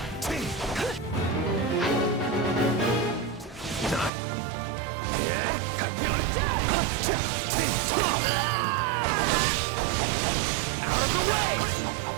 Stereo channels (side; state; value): left; drops out; at 4.1 s